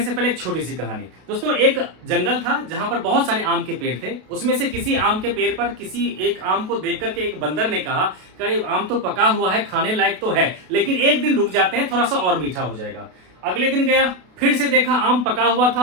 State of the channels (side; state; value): left; late; 32 ms